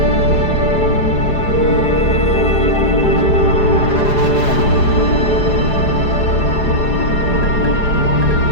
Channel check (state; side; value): late; right; 4.9 ms